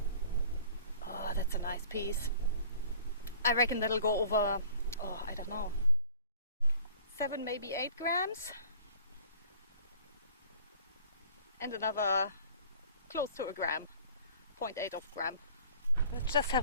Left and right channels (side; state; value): both; inverted; correlation -0.48